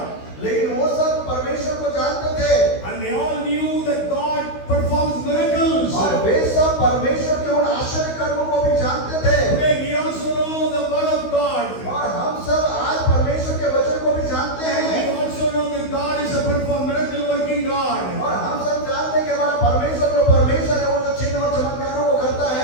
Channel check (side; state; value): right; late; 16 ms